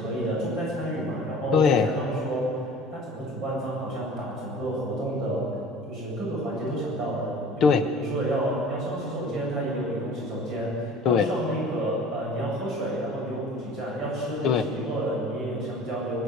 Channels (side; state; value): both; normal; correlation 0.45